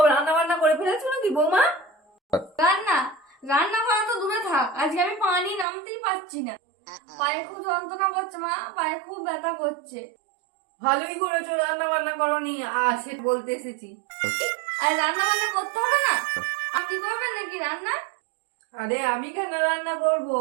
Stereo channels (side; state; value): left; drops out; at 5.7 s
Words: রান্না বান্না করে ফেলেছো নাকি বৌমা? রান্না রান্না করা তো দূরে থাক, আজকে আমি পানি নামতেই পারছি না। পায়ে খুব যন্ত্রণা করছে মা, পায়ে খুব ব্যথা করছে। ভালোই করেছো, রান্না বান্না করোনি, সে বলতে এসেছি। আর রান্না বান্না করতে হবে না? আপনি করবেন নাকি রান্না? আরে আমি কেন রান্না করবো?